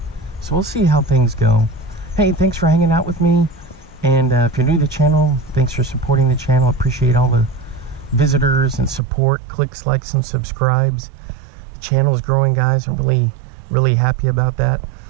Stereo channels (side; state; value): left; drops out; at 9.0 s